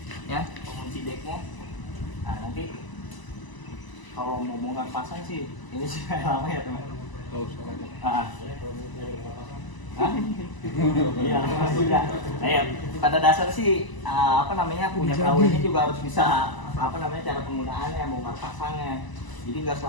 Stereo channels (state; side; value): late; right; 1.0 ms